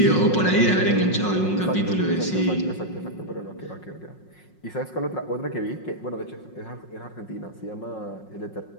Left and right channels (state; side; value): late; right; 5.5 ms